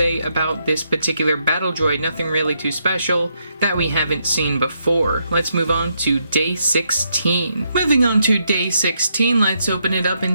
about this particular battle droid. Nothing really too special that we haven't seen before. Let's move on to day 16. Moving on to day 16, let's open it up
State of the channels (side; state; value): both; inverted; correlation -0.78